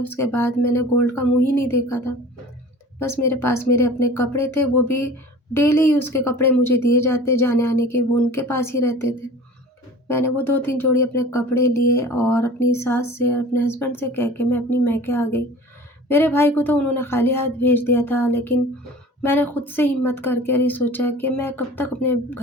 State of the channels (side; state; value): both; normal; correlation 0.42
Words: बाद मैंने गोल्ड का मुँह ही नहीं देखा था। बस मेरे पास मेरे अपने कपड़े थे, वो भी डेली यूज़ के कपड़े मुझे दिए जाते जाने-आने के, वो उनके पास ही रहते थे। मैंने वो 2-3 जोड़ी अपने कपड़े लिए और अपनी सास से और अपने हस्बैंड से कह के मैं अपनी मायके आ गई। मेरे भाई को तो उन्होंने खाली हाथ भेज दिया था, लेकिन मैंने खुद से हिम्मत करके ये सोचा कि मैं कब तक अपने